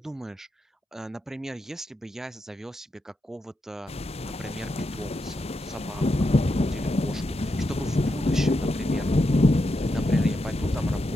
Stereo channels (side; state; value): both; normal; correlation 0.85